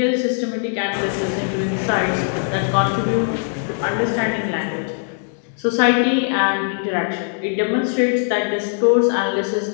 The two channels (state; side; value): silent; right; 56 dB below the other